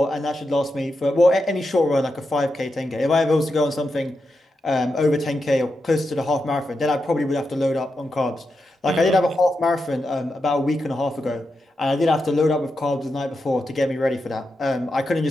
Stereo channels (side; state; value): both; normal; correlation 0.87